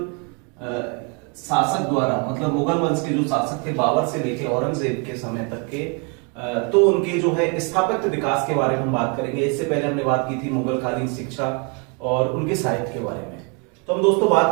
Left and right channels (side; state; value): left; quieter; 34.7 dB